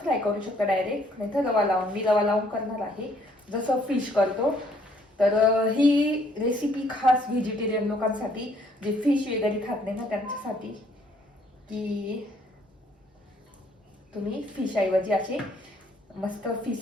फ्राय करू शकता डायरेक्ट, नाही तर रवा लावून, मी रवा लावून करणार आहे जसं फिश करतो. तर ही रेसिपी खास व्हेजिटेरियन लोकांसाठी, जे फिश वगैरे खात नाही ना त्यांच्यासाठी, की तुम्ही फिश ऐवजी असे मस्त फिश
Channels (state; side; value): normal; both; correlation 0.65